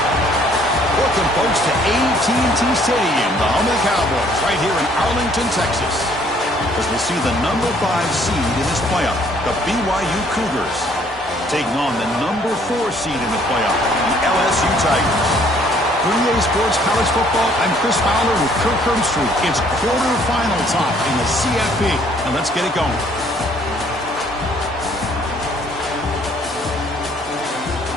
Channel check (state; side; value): normal; both; correlation 0.62